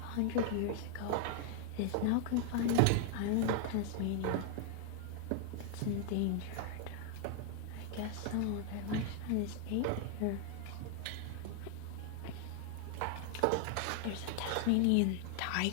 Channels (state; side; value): different; both; correlation 0.00